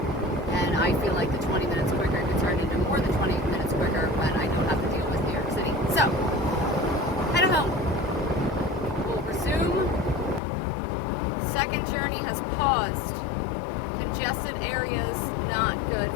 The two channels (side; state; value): right; drops out; at 10.4 s